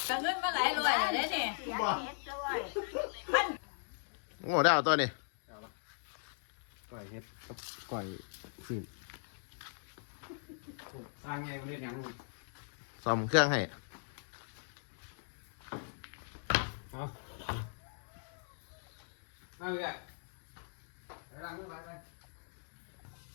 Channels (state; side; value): silent; right; digital silence